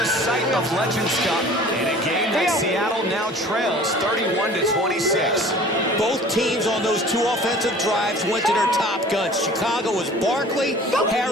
site of Legends Cup, in a game that Seattle now trails 31-26. Both teams on those 2 offensive drives went to their top guns. Chicago was Barkley,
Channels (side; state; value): both; normal; correlation 0.46